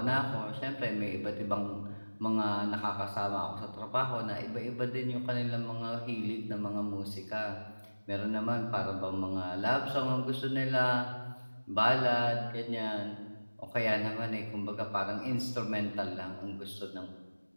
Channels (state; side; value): inverted; both; correlation -1.00